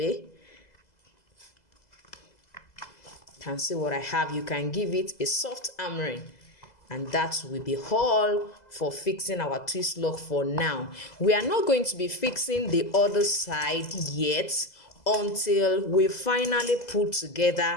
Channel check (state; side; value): late; right; 2.0 ms